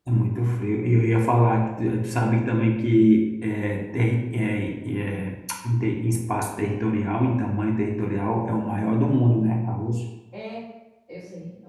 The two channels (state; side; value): identical; both; correlation 1.00